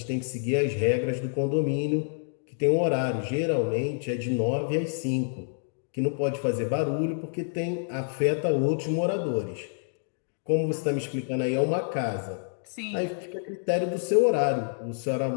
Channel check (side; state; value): right; silent; digital silence